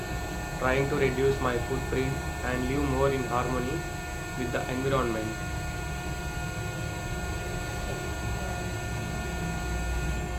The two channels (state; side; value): identical; both; correlation 1.00